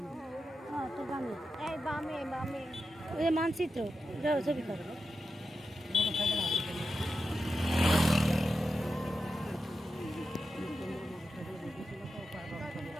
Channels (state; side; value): normal; both; correlation 0.89